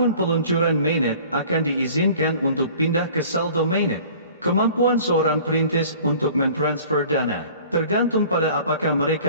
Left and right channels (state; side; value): inverted; both; correlation -0.47